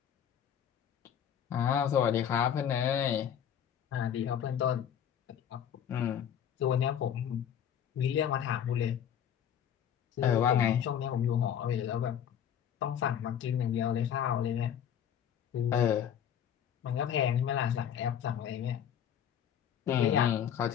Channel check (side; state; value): right; quieter; 9.1 dB